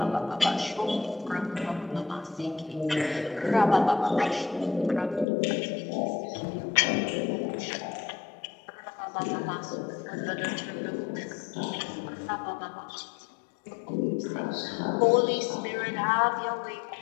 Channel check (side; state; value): right; drops out; at 5.2 s